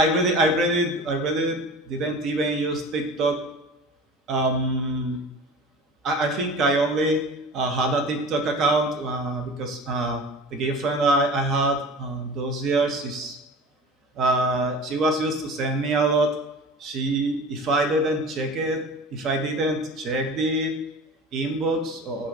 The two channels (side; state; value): both; normal; correlation 0.37